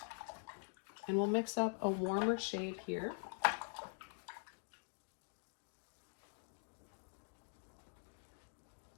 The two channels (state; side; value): silent; right; digital silence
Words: and we'll mix up a warmer shade here.